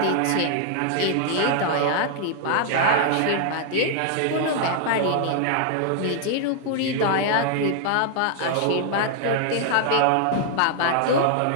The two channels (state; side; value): different; both; correlation 0.00